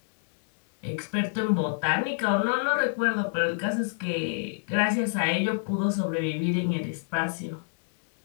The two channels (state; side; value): silent; right; digital silence